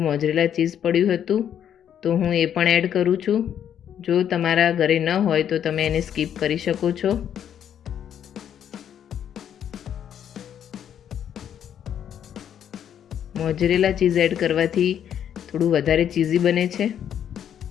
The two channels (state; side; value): quieter; right; 9.4 dB